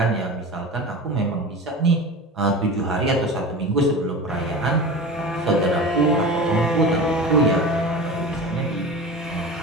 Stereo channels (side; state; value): both; normal; correlation 0.31